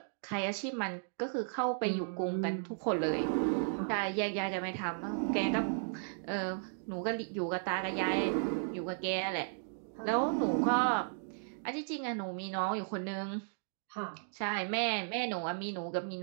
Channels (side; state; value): left; silent; digital silence